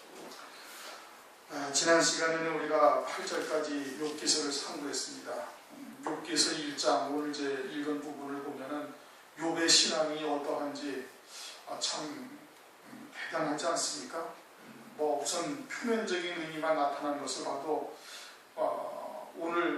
지난 시간에는 우리가 8절까지 욥기서를 상고했습니다. 욥기서 1장 오늘 이제 읽은 부분을 보면은 욥의 신앙이 어떠한지 참 대단하지 않습니까? 우선 표면적인 의미만 나타난 것을 봐도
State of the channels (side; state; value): both; identical; correlation 1.00